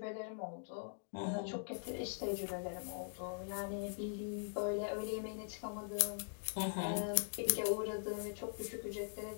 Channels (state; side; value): silent; right; digital silence